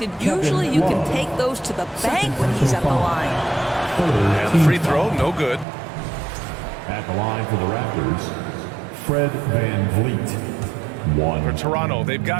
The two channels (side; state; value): left; drops out; at 5.7 s